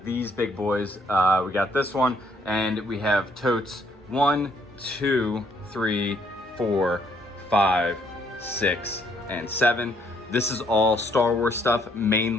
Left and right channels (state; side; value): normal; both; correlation 0.68